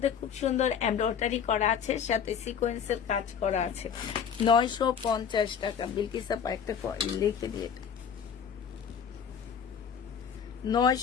খুব সুন্দর এমব্রয়ডারি করা আছে, সাথে সিকোয়েন্সের কাজ করা আছে। 950 টাকা। বিলকিস আপা একটা লিখে দিয়ে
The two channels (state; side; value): quieter; right; 7.4 dB